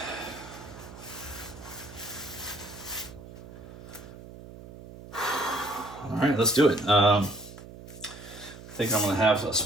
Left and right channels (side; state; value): right; noise; hum, 15 dB below the sound